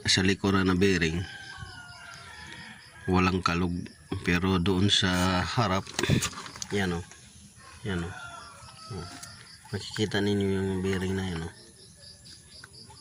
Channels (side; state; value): both; identical; correlation 1.00